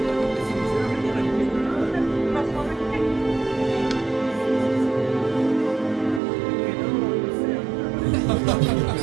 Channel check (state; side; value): drops out; left; at 6.2 s